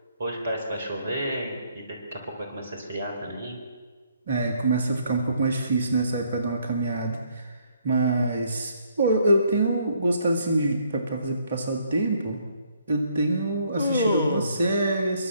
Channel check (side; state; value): both; inverted; correlation -0.68